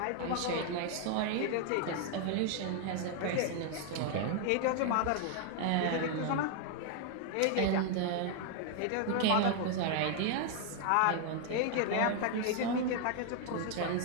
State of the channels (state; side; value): different; both; correlation 0.00